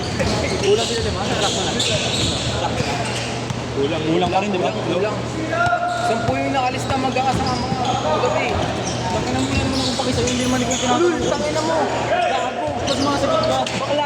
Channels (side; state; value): both; identical; correlation 1.00